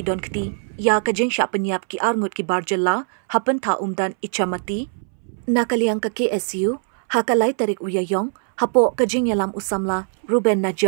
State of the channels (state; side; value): silent; left; 63 dB below the other